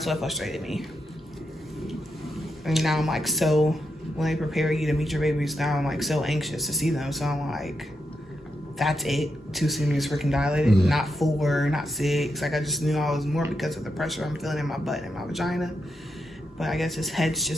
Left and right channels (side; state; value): both; normal; correlation 0.85